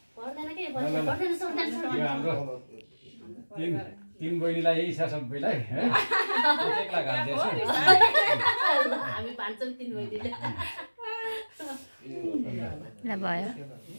पर्दैन के पर्दैन सोध्दैन यो हाम्रो तीन बहिनीलाई यही छ सबैलाई है एक्ला घाल्दैछ हामी भान्छौँ 3 बहिनीले ल भयो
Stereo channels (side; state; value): both; inverted; correlation -1.00